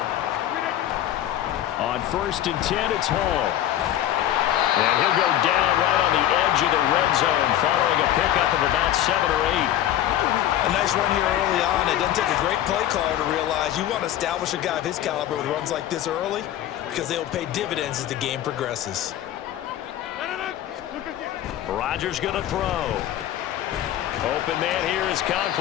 On 1st and 10, it's Hall. And he'll go down right on the edge of the red zone following a pickup of about 7 or 8. A nice run here early on. It doesn't take a great play caller to realize you want to establish a guy of his caliber with runs like this early because they will pay dividends as the game progresses. Rodgers going to throw. Open man here is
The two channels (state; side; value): quieter; right; 12.3 dB